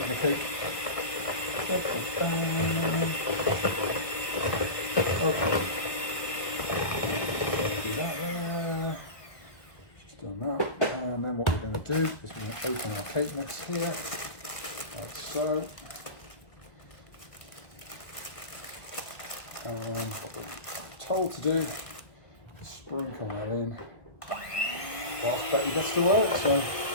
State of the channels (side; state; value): right; late; 1.8 ms